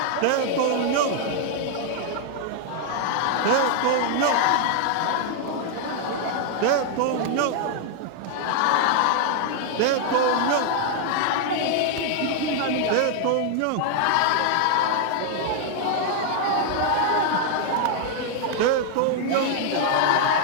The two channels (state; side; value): different; both; correlation 0.00